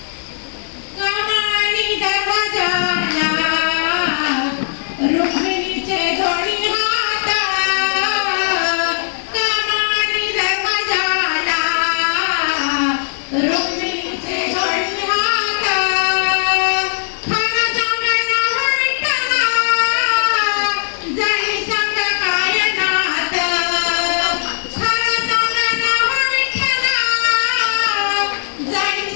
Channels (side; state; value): right; silent; digital silence